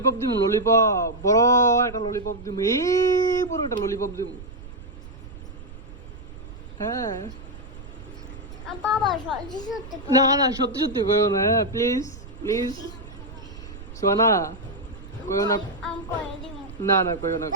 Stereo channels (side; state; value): right; noise; rumble, 15 dB below the sound